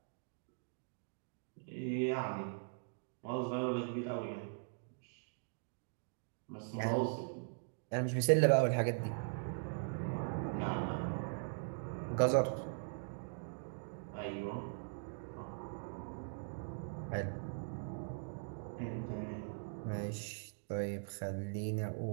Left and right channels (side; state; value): left; silent; digital silence